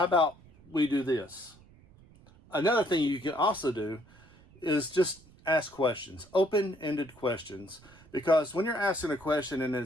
about we do this? Another thing you can also do is just ask questions, open-ended questions. Because when you're asking a question and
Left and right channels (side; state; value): right; noise; rumble, 26 dB below the sound